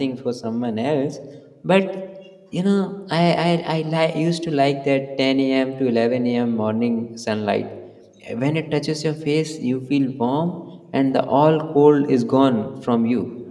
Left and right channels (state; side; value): identical; both; correlation 1.00